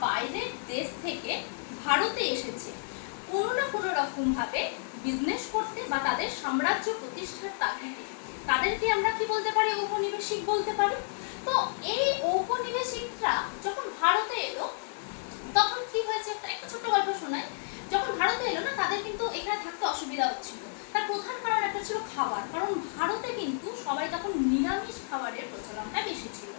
বাইরের দেশ থেকে ভারতে এসেছে কোনো না কোনো রকম ভাবে বিজনেস করতে বা তাদের সাম্রাজ্য প্রতিষ্ঠার তাগিদে, তাদেরকে আমরা কি বলতে পারি? ঔপনিবেশিক বলতে পারি। তো এই ঔপনিবেশিকরা যখন ভারতে সবাই তখন নিরামিষ খাবারের প্রচলনটা বেশি ছিল,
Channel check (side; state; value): right; silent; 57 dB below the other